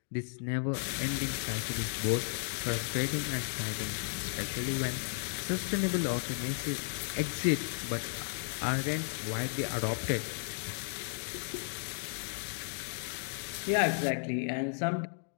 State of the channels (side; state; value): right; silent; digital silence